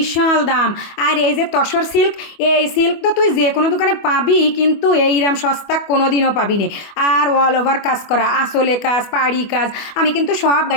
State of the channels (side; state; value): right; late; 24 ms